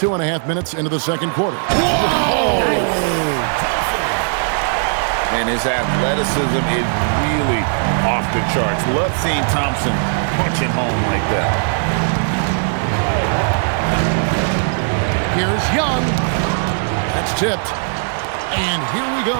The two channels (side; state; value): left; silent; digital silence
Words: minutes into the second quarter. Whoa! And his athleticism is really off the charts. Love seeing Thompson punching home like that. Here's Young. That's tipped. And here we go.